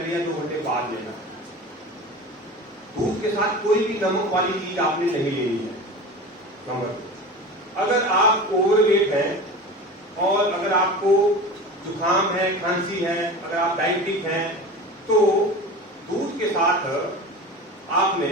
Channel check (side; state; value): both; normal; correlation 0.32